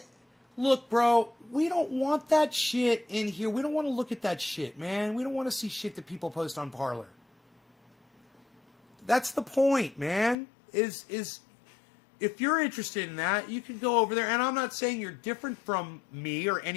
look, bro, we don't want that shit in here. We don't want to look at that shit, man. We don't want to see shit that people post on Parler. That's the point, man. Is if you're interested in that, you can go over there. And I'm not saying you're different from me or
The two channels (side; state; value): right; drops out; at 10.4 s